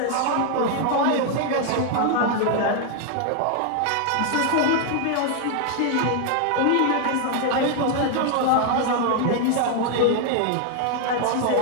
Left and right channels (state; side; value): different; both; correlation 0.00